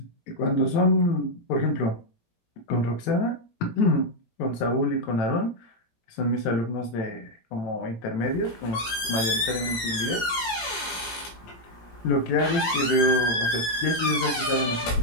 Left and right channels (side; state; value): right; late; 17 ms